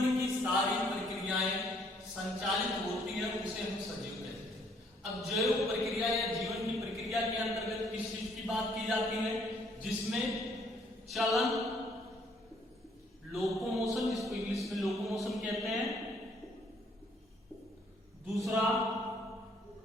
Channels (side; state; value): both; normal; correlation 0.65